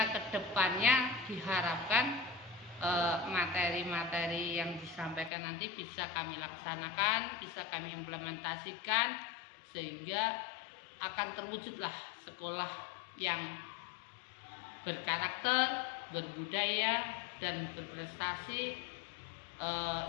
kedepannya diharapkan materi-materi yang disampaikan nanti bisa kami laksanakan, bisa kami implementasikan, sehingga akan terwujudlah sekolah yang berkarakter, berbudaya, dan berprestasi,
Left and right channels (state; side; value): drops out; right; at 5.3 s